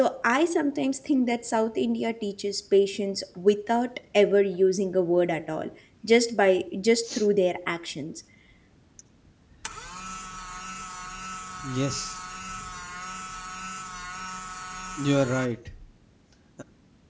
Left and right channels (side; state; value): both; identical; correlation 1.00